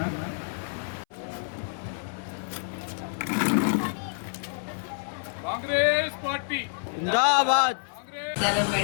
కాంగ్రెస్ పార్టీ జిందాబాద్.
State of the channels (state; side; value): silent; right; 59 dB below the other